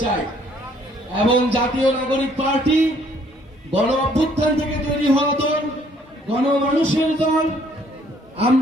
চাই। এবং জাতীয় নাগরিক পার্টি গণ অভ্যুত্থান থেকে তৈরি হওয়া দল, গণমানুষের দল।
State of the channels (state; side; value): normal; both; correlation 0.63